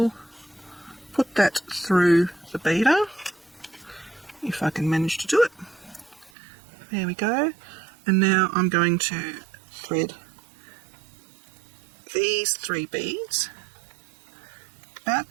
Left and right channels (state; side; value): drops out; left; at 6.3 s